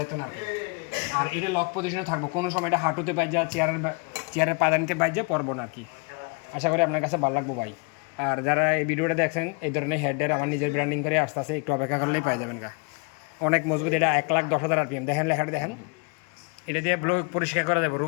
না আর কি। আর এটা লক পজিশনে থাকবো, কোনো সময় এটা হাঁটুতে পাই যা, চেয়ারের পাদানিতে পাই যা পড়বো না আর কি। আশা করি আপনার কাছে ভালো লাগবো ভাই। আর যারা এই ভিডিওটা দেখছেন, এই ধরনের হেডের আমার নিজের ব্র্যান্ডিং করে আসতে আসে, একটু অপেক্ষা করলেই পাই যাবেন গা। অনেক মজবুত, এটা 1,10,000 RPM। দেখেন লেখাটা দেখেন, এটা দিয়ে ব্লো পরিষ্কার করা যাবে,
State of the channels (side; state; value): right; quieter; 32.9 dB